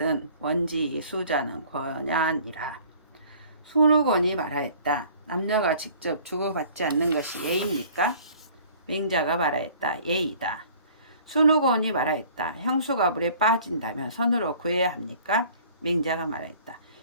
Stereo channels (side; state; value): both; inverted; correlation -0.52